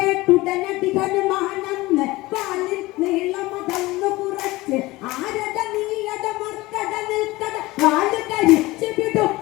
ഹനുമാനെന്ന് വാലിൽ നീളമതന്നു കുറച്ച് ആരട നീയട മർക്കട നിൽക്കട വാല് കരിച്ചു വിടും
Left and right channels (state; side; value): quieter; right; 20.0 dB